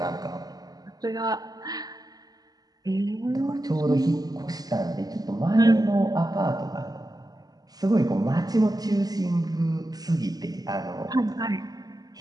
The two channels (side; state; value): left; late; 0.18 ms